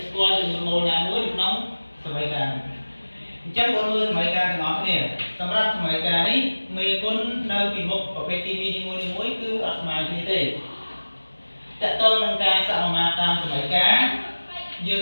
ស្គាល់ចំនួនម៉ូលណាមួយនៅក្នុងសមីការអញ្ចឹងបងមើលសមីការទាំងអស់គ្នាសម្រាប់សមីការនេះមេគុណនៅពីមុខប្រភេទគីមីនីមួយៗគឺអត់ស្មើគ្នាទេតកតងនឹងការសមាមាត្រតាមសមីការយើង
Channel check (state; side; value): inverted; both; correlation -1.00